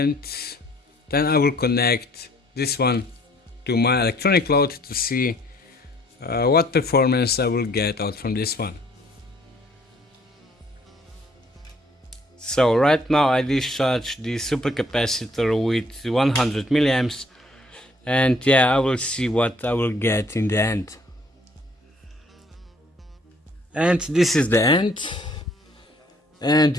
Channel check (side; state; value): both; normal; correlation 0.61